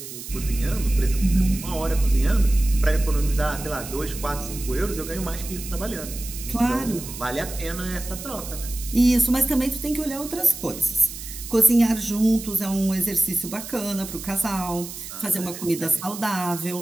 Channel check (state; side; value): noise; right; hiss, 11 dB below the sound